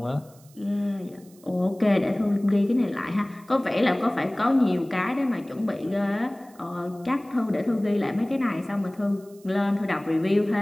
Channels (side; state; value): right; noise; hiss, 27 dB below the sound